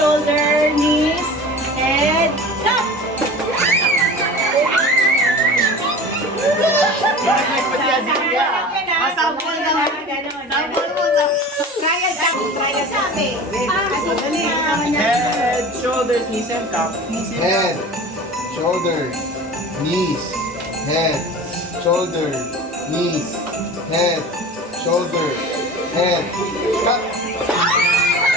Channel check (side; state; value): both; normal; correlation 0.37